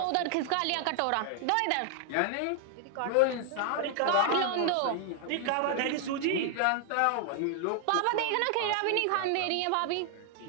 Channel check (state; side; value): different; both; correlation 0.00